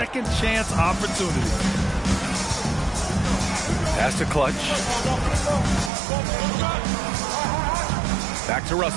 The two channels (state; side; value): drops out; left; at 5.9 s